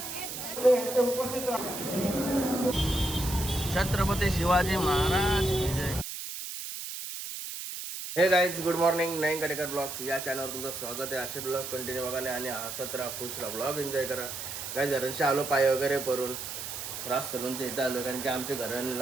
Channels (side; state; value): right; noise; hiss, 7 dB below the sound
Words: छत्रपती शिवाजी महाराज की जय. हे गाईज, गुड मॉर्निंग. नईन कडेकर ब्लॉग्स या चॅनलवर तुमचं स्वागत आहे. असे ब्लॉग कंटिन्यू बघा आणि हसत राहा, खुश राहा, ब्लॉग एन्जॉय करा. काही घरांशी आलो पाय वगैरे परून रास सलूनच्या इथं आलो कारण की आमच्या घरात